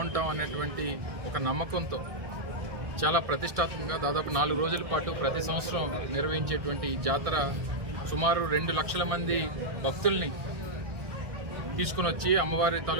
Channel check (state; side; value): late; left; 1.6 ms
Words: అనేటువంటి ఒక నమ్మకంతో చాలా ప్రతిష్టాత్మకంగా దాదాపు 4 రోజుల పాటు ప్రతి సంవత్సరం నిర్వహించేటువంటి ఈ జాతర సుమారు 2 లక్షల మంది భక్తుల్ని తీసుకుని వచ్చి అమ్మవారి